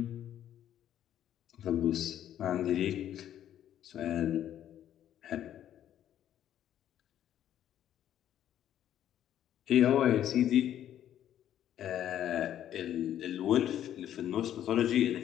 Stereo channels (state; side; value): quieter; right; 11.0 dB